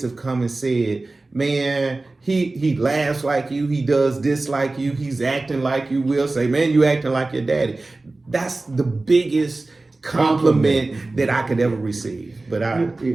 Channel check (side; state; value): left; quieter; 3.2 dB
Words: have come and said, man, he laughs like you, he does this like you, he's acting like you. Will say, man, you acting like your daddy. That's the biggest compliment that I could ever receive. But